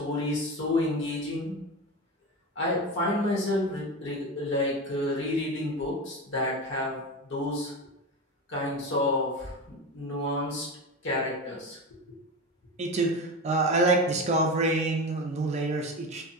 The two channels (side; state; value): both; normal; correlation 0.23